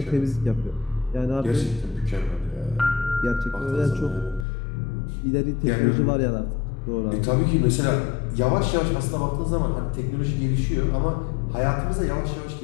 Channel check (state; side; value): drops out; right; at 4.5 s